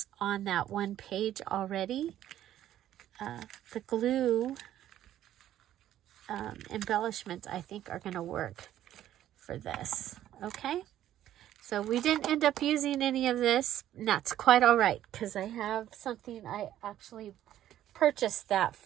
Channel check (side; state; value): left; quieter; 12.2 dB